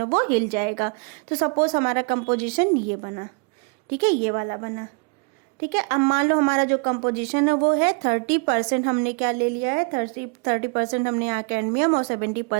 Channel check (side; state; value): left; quieter; 35.3 dB